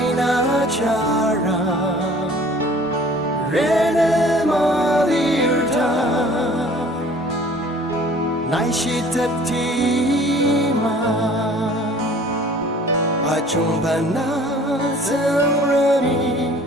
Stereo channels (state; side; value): normal; both; correlation 0.51